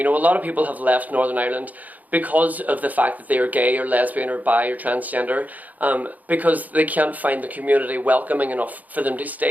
know, a lot of people have left Northern Ireland because of the fact that they are gay or lesbian or bi or transgender, because they can't find the community welcoming enough for them to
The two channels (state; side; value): late; left; 0.079 ms